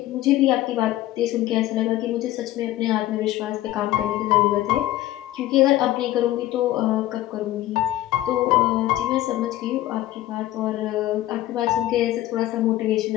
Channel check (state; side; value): quieter; right; 15.0 dB